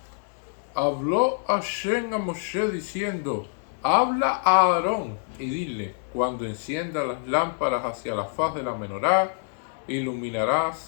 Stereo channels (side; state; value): right; silent; digital silence